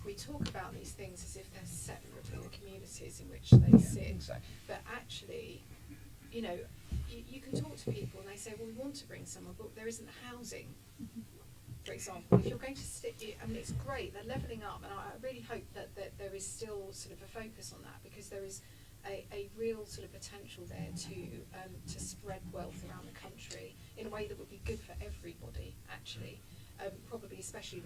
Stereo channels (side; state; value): both; identical; correlation 1.00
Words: we talk about these things as if they're separate from the communities in which they sit. Exactly. But actually, you can talk to people and they say, well, we want to bring someone, but there isn't housing. for example, if you're going to stick, I mean, it's great, they're levelling up, and I really hope that there is still sort of a focus on that, because there is a real sort of potential there to spread wealth around the country in a way that would be good for everybody, actually. Probably especially